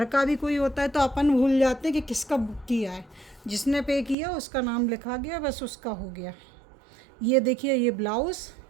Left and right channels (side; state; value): left; drops out; at 4.2 s